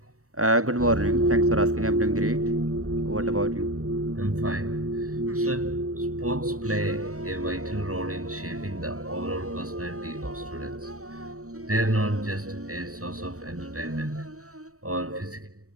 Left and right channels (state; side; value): late; left; 0.65 ms